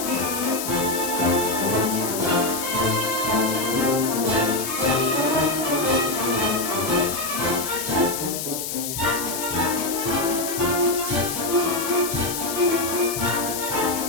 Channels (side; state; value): left; noise; hiss, 5 dB below the sound